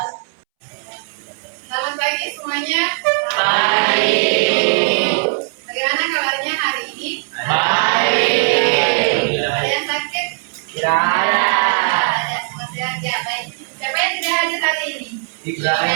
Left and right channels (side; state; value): left; silent; 67 dB below the other